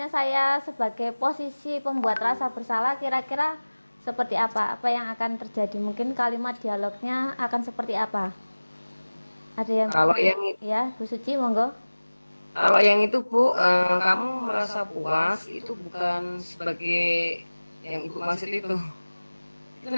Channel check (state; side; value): inverted; both; correlation -1.00